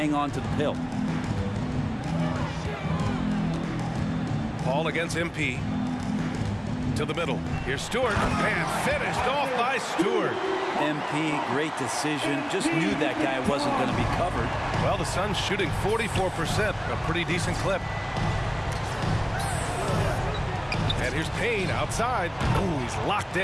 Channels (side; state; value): both; identical; correlation 1.00